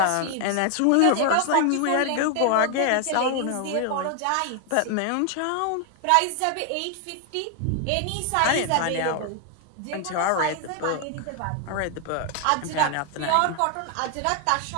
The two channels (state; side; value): different; both; correlation 0.00